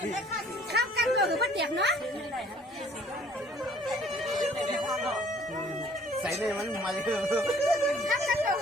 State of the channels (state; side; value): normal; both; correlation 0.57